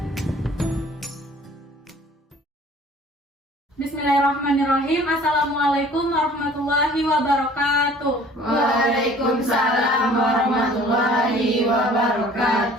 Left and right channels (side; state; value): both; normal; correlation 0.51